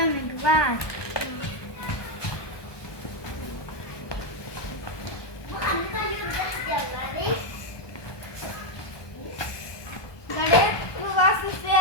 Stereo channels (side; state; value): right; late; 1.2 ms